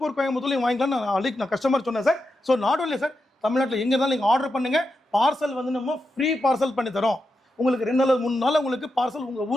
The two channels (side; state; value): both; normal; correlation 0.87